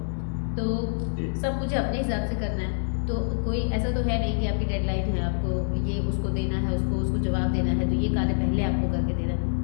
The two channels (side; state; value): right; silent; 61 dB below the other